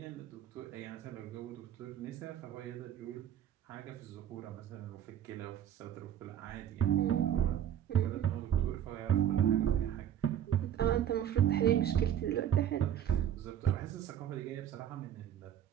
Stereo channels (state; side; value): quieter; left; 10.2 dB